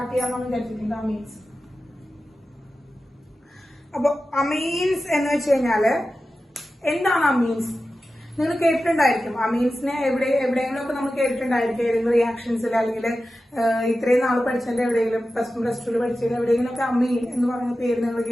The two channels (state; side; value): normal; both; correlation 0.93